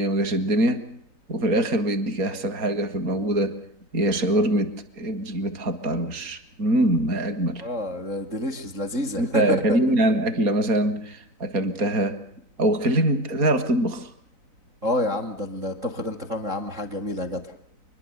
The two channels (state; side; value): late; left; 4.2 ms